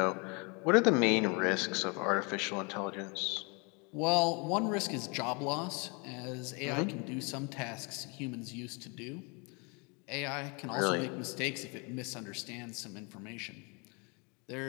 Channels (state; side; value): quieter; right; 31.4 dB